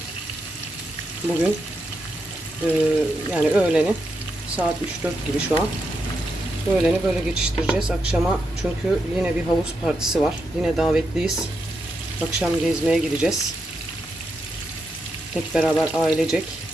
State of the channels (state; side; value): normal; both; correlation 0.84